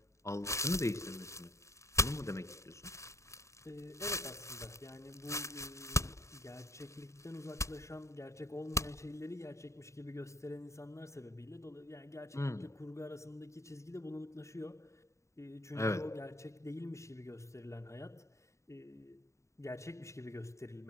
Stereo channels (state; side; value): late; right; 0.14 ms